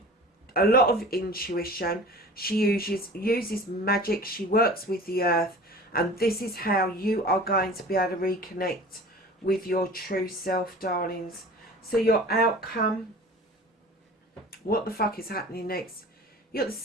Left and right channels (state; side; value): normal; both; correlation 0.41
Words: a lot of intuition. She uses magic. She works with the earth. And this is how you are going to be able to reconnect with your true self, darlings. So your outcome, what the fuck is happening next? You got the